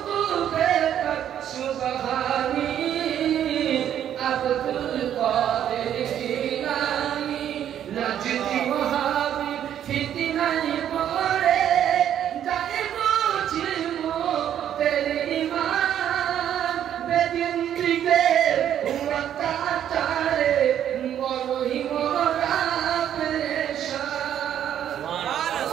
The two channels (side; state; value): left; quieter; 10.2 dB